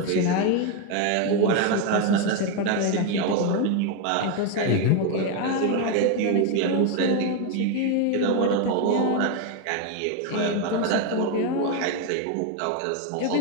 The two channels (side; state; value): both; different; correlation 0.02